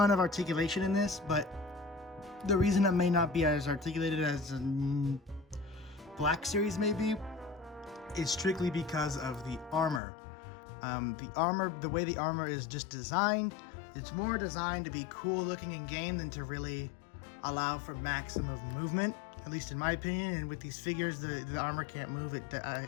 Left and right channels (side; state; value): right; drops out; at 10.0 s